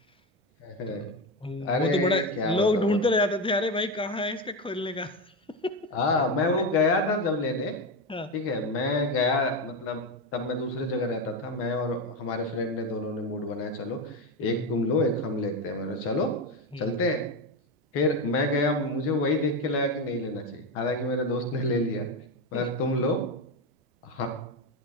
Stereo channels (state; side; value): normal; both; correlation 0.14